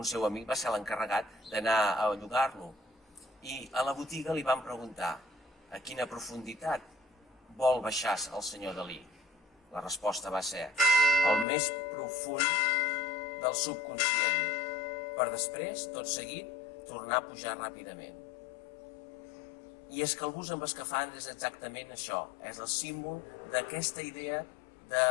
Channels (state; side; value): drops out; right; at 11.5 s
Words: seu amic va ser l'encarregat d'anar a llogar-lo i a la botiga li van preguntar a quina profunditat vol baixar el senyor Dalí. La resposta va ser el més profund del subconscient, per després, tot seguit, tornar a pujar ràpidament. I és que el bus amb escafandra és exactament això, és el símbol d'aquesta idea de